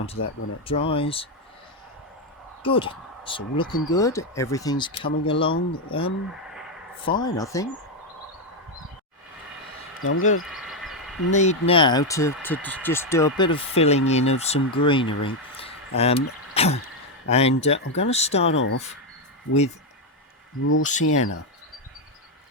that when it dries. Good, it's all looking good, everything's coming along fine, I think. Now I'm going to need now to just do a bit of filling in of some greenery. And I'm going to start off with raw sienna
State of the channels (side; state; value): both; normal; correlation 0.05